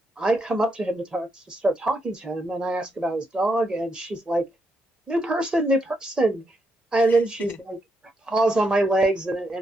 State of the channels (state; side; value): normal; both; correlation 0.80